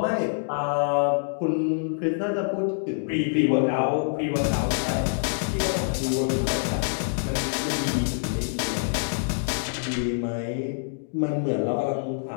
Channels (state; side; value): silent; right; digital silence